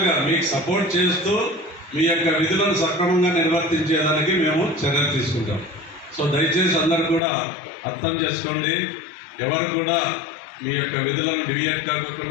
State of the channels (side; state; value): right; drops out; at 7.2 s